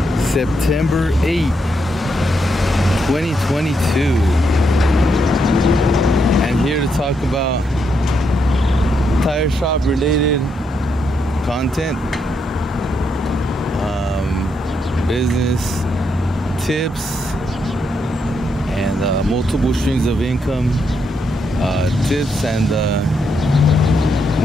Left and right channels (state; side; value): normal; both; correlation 0.79